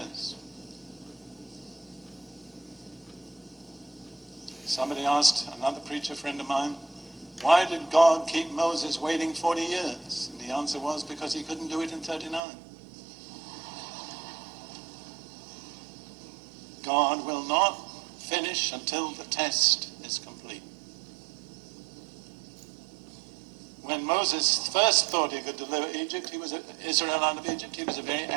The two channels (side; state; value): left; drops out; at 12.4 s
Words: Somebody asked, another preacher friend of mine, why did God keep Moses waiting 40 years? And the answer was because he couldn't do it in 39. God will not finish until the test is complete. When when Moses first thought he could deliver Israel out of Egypt, he was a very